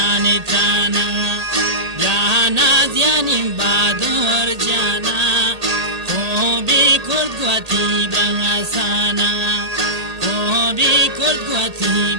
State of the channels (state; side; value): late; left; 1.8 ms